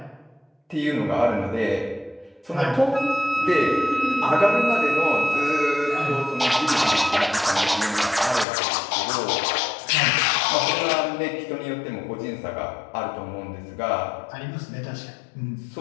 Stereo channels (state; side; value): drops out; right; at 8.5 s